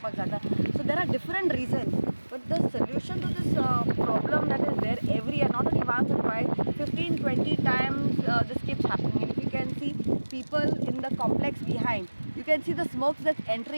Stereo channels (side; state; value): both; inverted; correlation -1.00